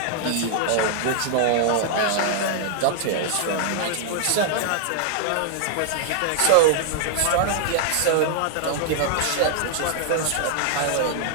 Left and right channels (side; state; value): both; different; correlation -0.01